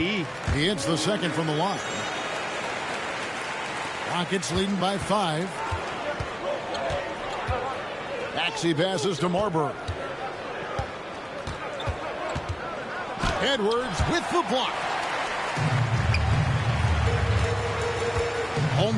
He hits the second from the line. Rockets leading by 5. Maxey passes to Marbury. Edwards with the block.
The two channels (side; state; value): both; identical; correlation 1.00